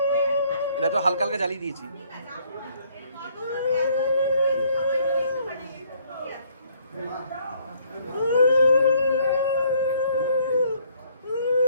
এটা তো হালকা হালকা জ্বালিয়ে দিয়েছি।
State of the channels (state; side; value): inverted; both; correlation -0.64